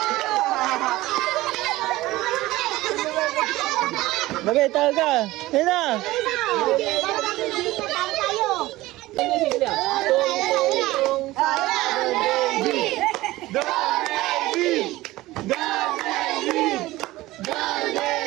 David, tawag ka. Dali na.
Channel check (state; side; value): quieter; left; 18.0 dB